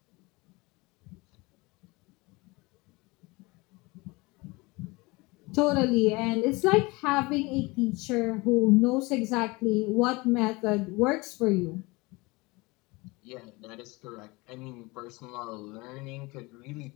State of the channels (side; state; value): right; quieter; 24.3 dB